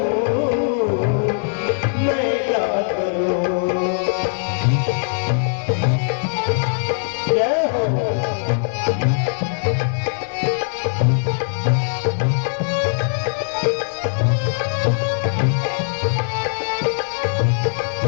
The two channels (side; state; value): right; silent; digital silence